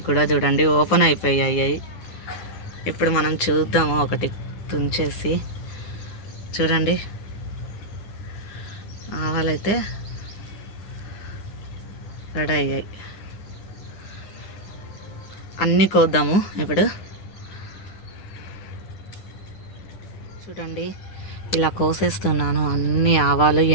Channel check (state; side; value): late; right; 9.8 ms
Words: కూడా చూడండి, ఓపెన్ అయిపోయాయి. ఇప్పుడు మనం చూద్దాము ఒకటి తుంచేసి. చూడండి ఆవాలైతే రెడీ అయ్యాయి. అన్నీ కోద్దాము ఇప్పుడు. చూడండి ఇలా కోసేస్తున్నాను అన్ని ఆవాలు,